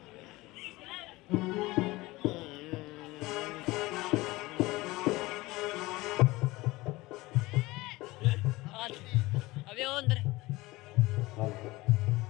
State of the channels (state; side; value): quieter; right; 20.3 dB